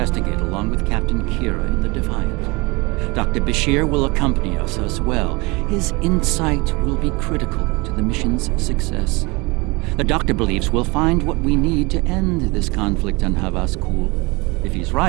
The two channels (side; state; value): left; quieter; 25.7 dB